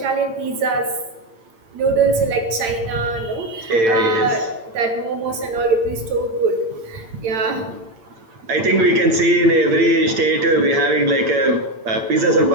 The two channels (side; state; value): left; late; 8.8 ms